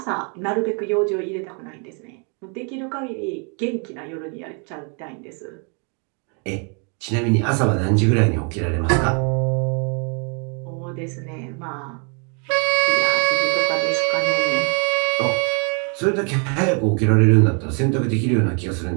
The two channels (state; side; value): quieter; left; 37.5 dB